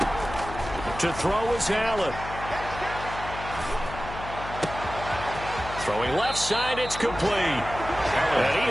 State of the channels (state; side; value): noise; left; hum, 11 dB below the sound